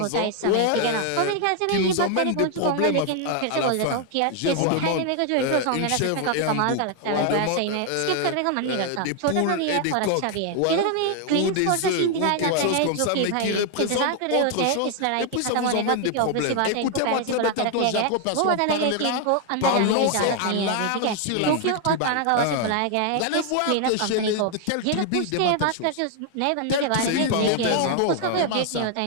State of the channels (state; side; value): different; both; correlation 0.00